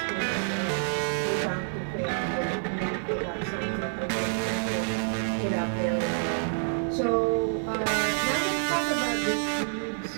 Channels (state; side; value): silent; left; digital silence